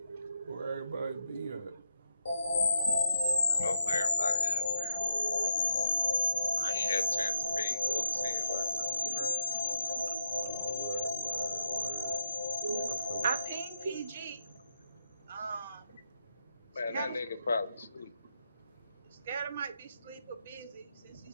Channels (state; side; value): inverted; both; correlation -0.81